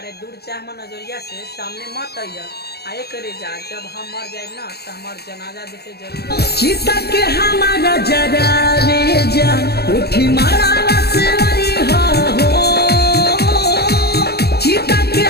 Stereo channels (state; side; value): late; right; 0.47 ms